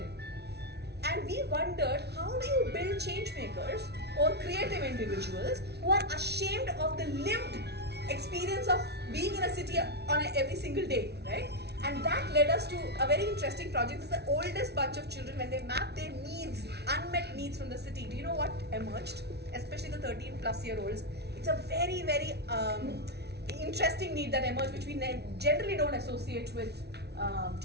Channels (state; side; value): late; left; 0.49 ms